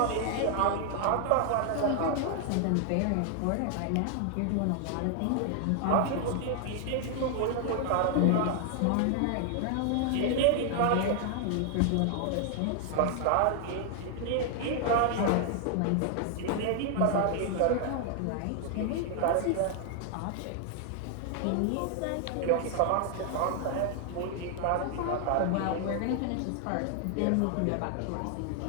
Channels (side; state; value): both; different; correlation 0.00